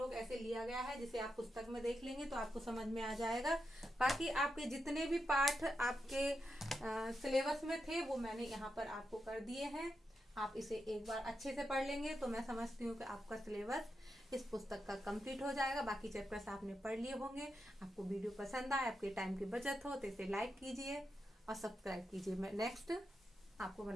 ऐसे लिया गया है, जिसे आप पुस्तक में देख लेंगे तो आपको समझ में आ जाएगा। बाकी आपके जितने भी पाठ आपके सिलेबस में थे वो मैंने यहाँ पर आपको कर दिए हैं। आप इसे एक बार अच्छे से पढ़ लेंगे तो मैं समझती हूँ कि आपका सिलेबस इस पुस्तक का कंप्लीट हो जाएगा। बाकी चैप्टर्स आपने पढ़ लिए होंगे। आपको वीडियो पसंद आए, आपके टाइम की बचत हो तो इसे लाइक कीजिए और सब्सक्राइब कीजिए। मैं नेक्स्ट आपको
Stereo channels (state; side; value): normal; both; correlation 0.86